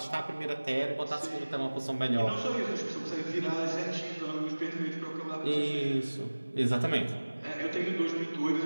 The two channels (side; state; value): both; inverted; correlation -1.00